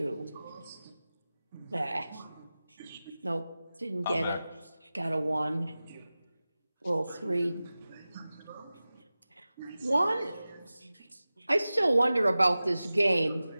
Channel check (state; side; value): inverted; both; correlation -0.96